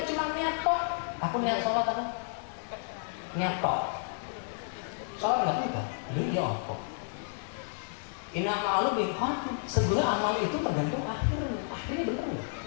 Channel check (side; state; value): right; silent; digital silence